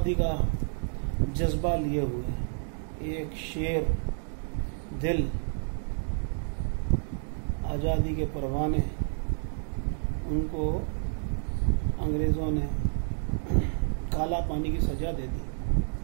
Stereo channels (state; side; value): silent; left; 57 dB below the other